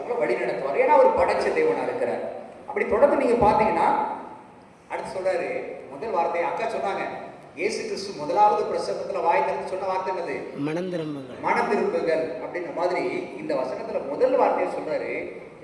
வழி நடத்துவார். ஏன்னா அவர் படைச்ச தேவனா இருக்கிறார். அப்படி தொடர்ந்து நீங்க பாத்தீங்கன்னா அடுத்து சொல்றாரு, முதல் வார்த்தை அக்கா சொன்னாங்க, இயேசு கிறிஸ்து முதலாவது பிரசங்கத்துல வாய் திறந்து சொன்ன வார்த்தை என்னது? மனம் திரும்புங்கள் அப்படின்ற மாதிரி இந்த வசனத்துல முதல் வார்த்தையை சொல்றாரு.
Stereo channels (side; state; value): both; identical; correlation 1.00